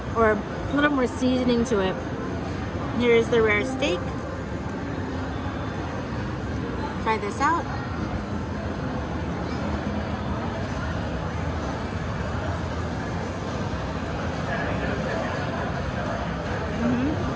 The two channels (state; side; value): identical; both; correlation 1.00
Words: or a little more seasoning to it. Here's the rare steak. Try this out.